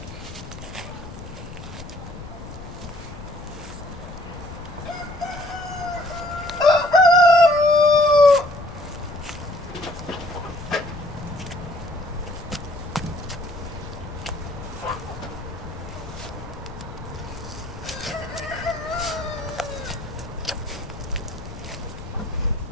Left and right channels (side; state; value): left; noise; rumble, 13 dB below the sound